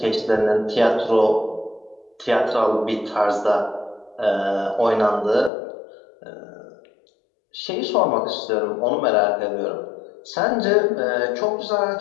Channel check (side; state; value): right; drops out; at 5.5 s